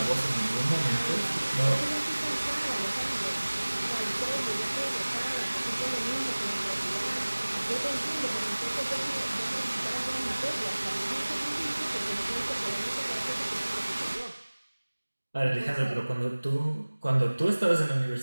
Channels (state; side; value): inverted; both; correlation -1.00